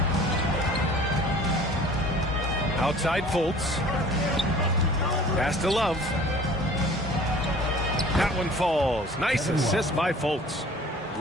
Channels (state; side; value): normal; both; correlation 0.48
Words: Outside Fultz. Pass to Love. That one falls. Nice assist by Fultz.